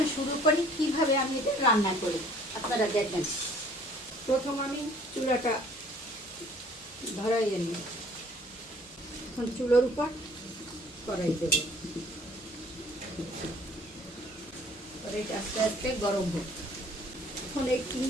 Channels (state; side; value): noise; left; hum, 28 dB below the sound